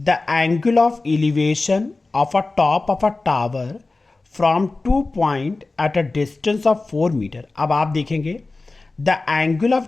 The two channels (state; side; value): quieter; right; 3.5 dB